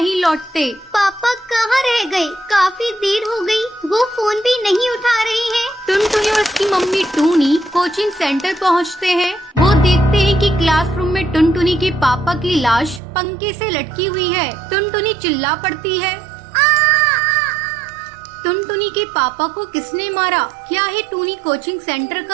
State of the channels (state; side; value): drops out; left; at 13.0 s